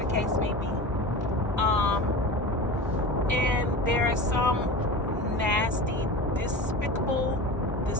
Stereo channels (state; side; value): normal; both; correlation 0.31